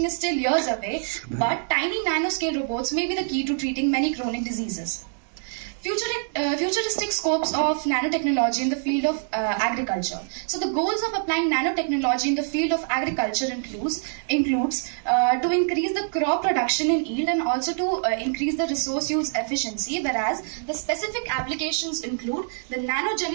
is still years away, but tiny nanoscale robots may be the key to treating many chronic diseases. Futuristic scopes of nanotechnology in the field of agriculture. So the goals of applying nanotechnology in the field of agriculture includes to increase the crop production in yield and also to increase the resource use efficiency, whereas the specific applications include the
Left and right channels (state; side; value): silent; left; digital silence